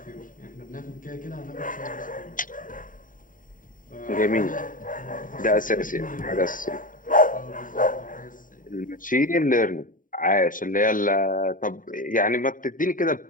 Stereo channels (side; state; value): right; late; 0.39 ms